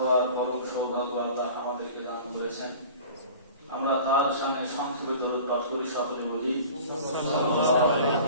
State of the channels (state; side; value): inverted; both; correlation -0.42